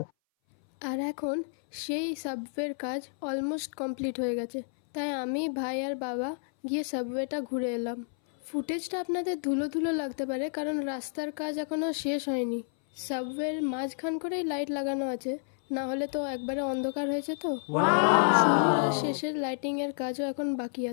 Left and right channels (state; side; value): silent; right; 58 dB below the other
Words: আর এখন সেই সাবওয়ের কাজ অলমোস্ট কমপ্লিট হয়ে গেছে, তাই আমি, ভাই আর বাবা গিয়ে সাবওয়েটা ঘুরে এলাম। ফুটেজটা আপনাদের ধুলো ধুলো লাগতে পারে, কারণ রাস্তার কাজ এখনও শেষ হয়নি। সাবওয়ের মাঝখান করেই লাইট লাগানো আছে, না হলে তো একবারে অন্ধকার হয়েছে। তো শুরুর আর শেষের লাইটিংয়ের কাজও এখন বাকি